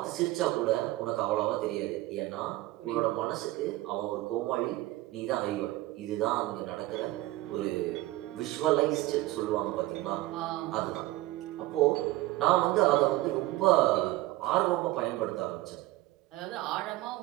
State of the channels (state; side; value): quieter; left; 17.9 dB